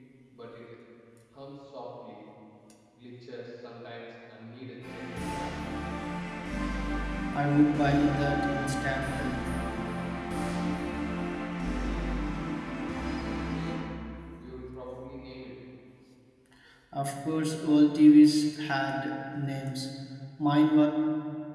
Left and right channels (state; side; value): identical; both; correlation 1.00